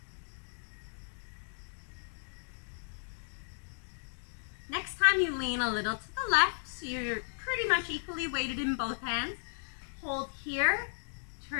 Next time you lean a little to the left, so you're pretty much equally weighted in both hands. Hold here,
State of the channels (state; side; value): silent; right; digital silence